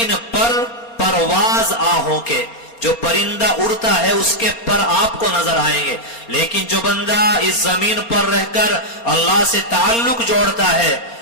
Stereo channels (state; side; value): late; right; 4.3 ms